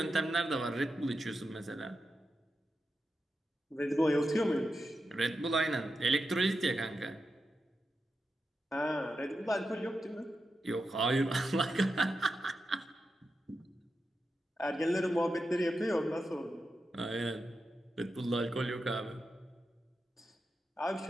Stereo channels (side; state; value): both; normal; correlation 0.89